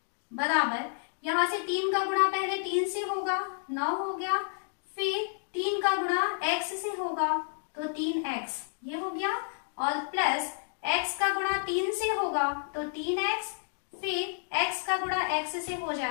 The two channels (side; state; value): right; silent; digital silence